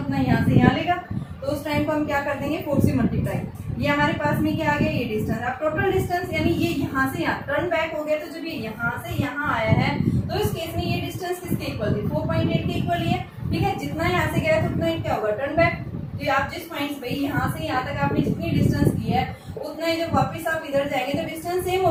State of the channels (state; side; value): identical; both; correlation 1.00